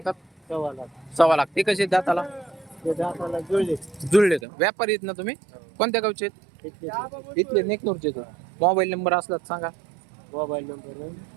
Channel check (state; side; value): drops out; left; at 4.4 s